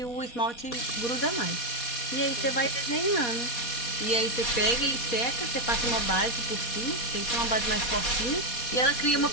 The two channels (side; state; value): right; late; 4.2 ms